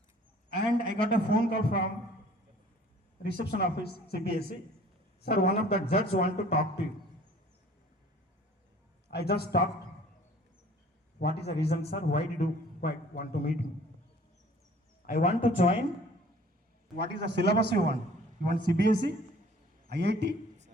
and I got a phone call from reception office CBSE. Sir, one of the judges want to talk to you. I just talked. What is the reason, sir? Why did you want to meet me? I want to join. What is the syllabus you want? You want CBSE, IIT,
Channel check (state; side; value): normal; both; correlation 0.51